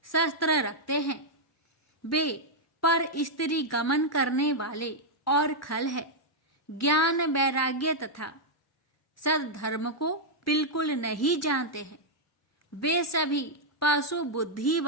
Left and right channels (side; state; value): both; normal; correlation -0.04